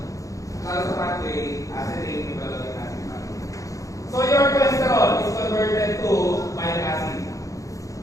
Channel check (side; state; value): right; late; 0.16 ms